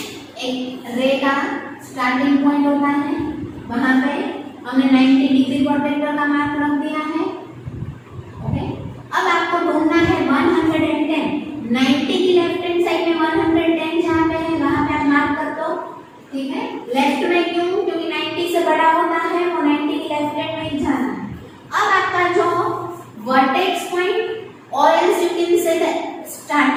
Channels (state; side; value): identical; both; correlation 1.00